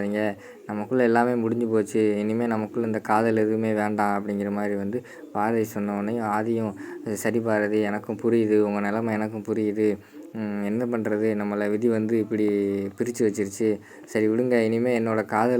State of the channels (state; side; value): identical; both; correlation 1.00